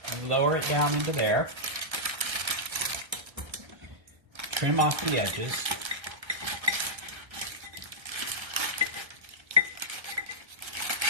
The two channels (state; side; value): late; left; 1.3 ms